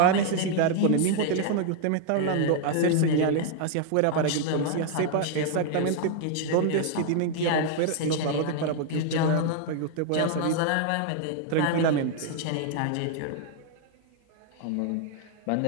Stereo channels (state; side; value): different; both; correlation 0.00